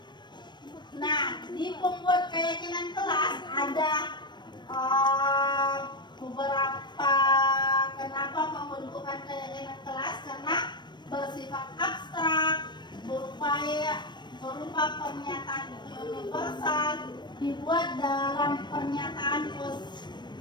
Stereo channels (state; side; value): late; right; 0.22 ms